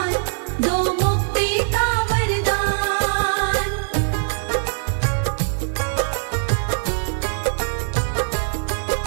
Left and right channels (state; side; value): silent; left; 64 dB below the other